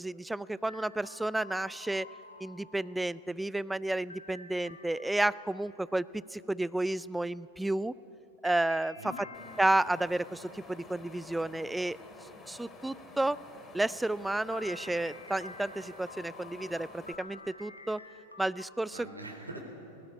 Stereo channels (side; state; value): both; normal; correlation 0.95